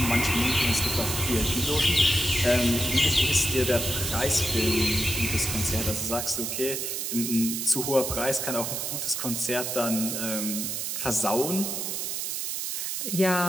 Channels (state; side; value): noise; right; hiss, 3 dB below the sound